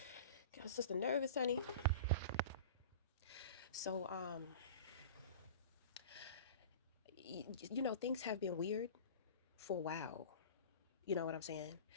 a sister nervous, honey. So things have been weird for a while. You know what I'm saying?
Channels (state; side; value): inverted; both; correlation -0.35